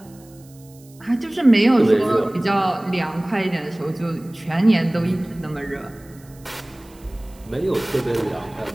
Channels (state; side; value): noise; right; hiss, 27 dB below the sound